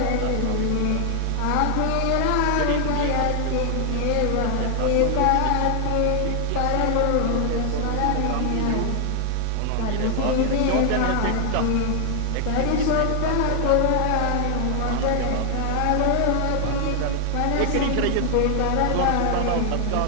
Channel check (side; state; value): both; different; correlation 0.00